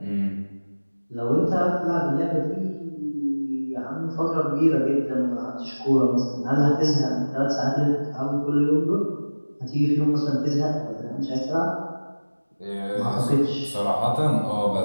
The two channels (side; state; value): both; inverted; correlation -1.00